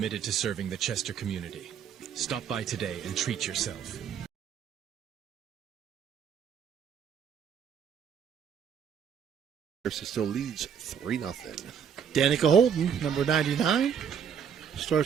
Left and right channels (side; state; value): left; quieter; 7.8 dB